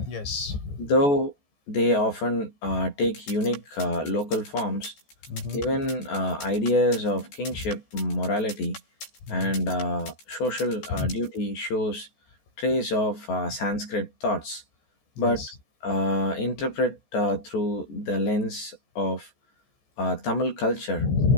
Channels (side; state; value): right; late; 14 ms